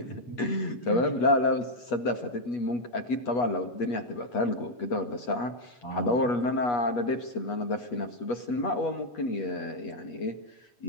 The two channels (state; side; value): late; right; 8.3 ms